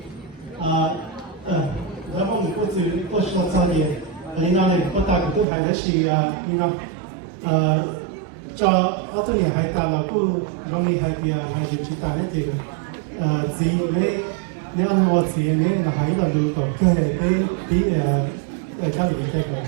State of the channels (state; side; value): drops out; left; at 5.5 s